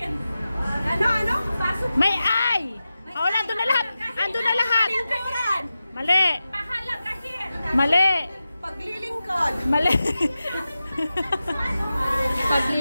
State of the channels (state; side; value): inverted; both; correlation -0.93